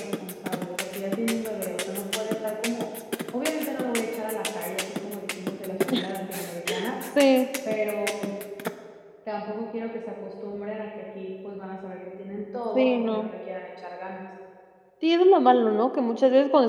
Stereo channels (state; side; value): identical; both; correlation 1.00